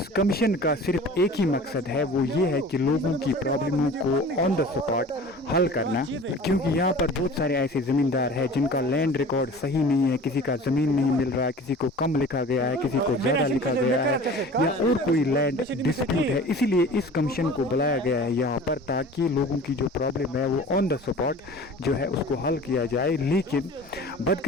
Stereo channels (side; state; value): both; normal; correlation 0.42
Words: कमीशन का सिर्फ एक ही मकसद है, वो ये है कि लोगों की प्रॉब्लमों को ऑन द स्पॉट हल करना, क्योंकि यहाँ पर बहुत सारे ऐसे ज़मींदार हैं जिनका लैंड रिकॉर्ड सही नहीं है, किसी का ज़मीन नहीं मिल रहा है, किसी को कम लिखा गया है, किसी को ज़्यादा लिखा गया है, या और कोई लैंड डिस्प्यूट है। इसीलिए इस कमीशन को बुलाया गया है यहाँ पर, ताकि लोगों की जो प्रॉब्लम है वो ऑन द स्पॉट जो है उसको हल किया जाए। लेकिन